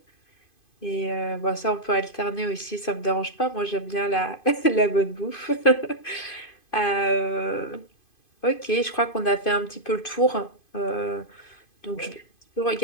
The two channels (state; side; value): late; right; 2.5 ms